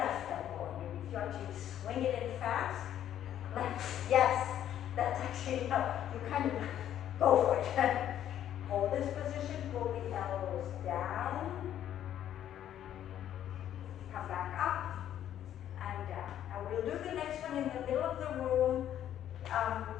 elbow. If you actually swing it in fast. Left. Yes. That's actually no. You kind of go for it. Hold this position, pull the elbows down, come back up, and down. Now we'll do the next one in the middle of the room.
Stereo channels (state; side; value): quieter; right; 10.9 dB